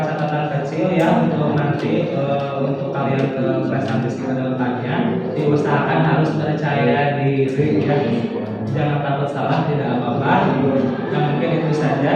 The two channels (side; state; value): both; identical; correlation 1.00